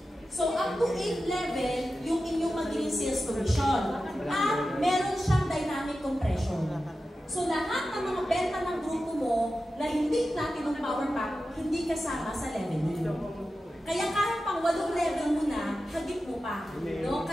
So, up to 8th level, yung inyong magiging sales commission. At meron siyang dynamic compression. So, lahat ng mga benta ng grupo mo na hindi platinum power pack, hindi kasama sa level mo. Kaya kahit pang 8 level mo na, hagip mo pa. No?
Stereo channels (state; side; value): normal; both; correlation 0.92